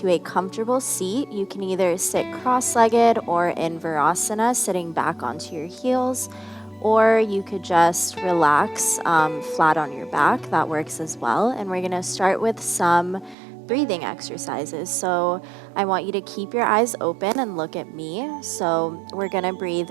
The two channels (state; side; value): drops out; left; at 13.4 s